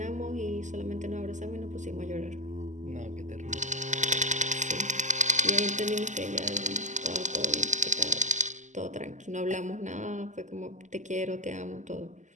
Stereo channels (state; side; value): late; left; 0.35 ms